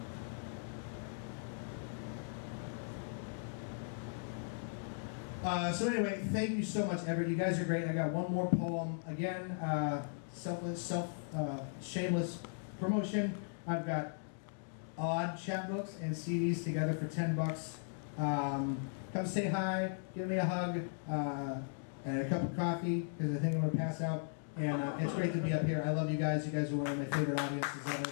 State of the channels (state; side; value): silent; right; digital silence